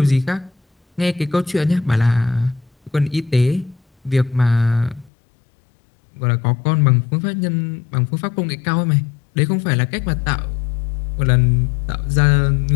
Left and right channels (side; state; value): right; drops out; at 5.1 s